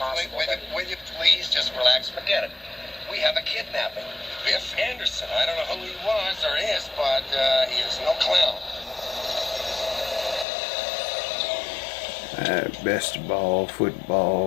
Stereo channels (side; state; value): right; drops out; at 10.5 s